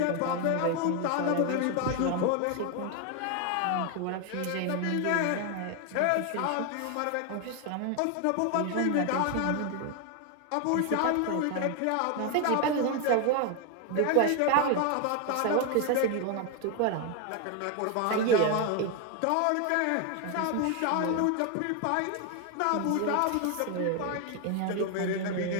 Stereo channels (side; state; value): both; different; correlation 0.01